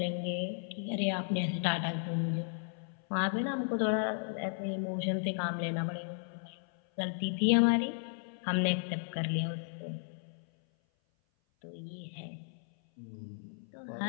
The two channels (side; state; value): right; silent; 55 dB below the other